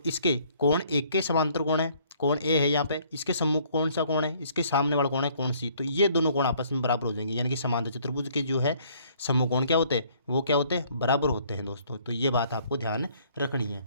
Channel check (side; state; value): both; inverted; correlation -0.61